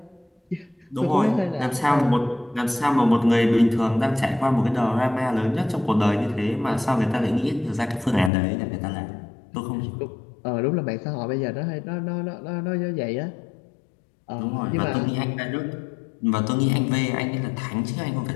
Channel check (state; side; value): drops out; right; at 8.3 s